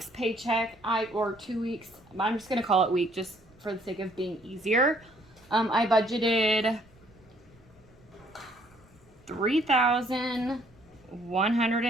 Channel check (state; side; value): noise; right; rumble, 28 dB below the sound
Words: paycheck, or 2 weeks, I'm just going to call it week just for the sake of being easier. I budgeted